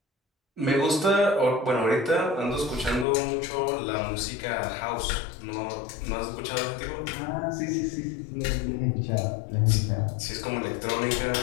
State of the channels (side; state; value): right; drops out; at 3.1 s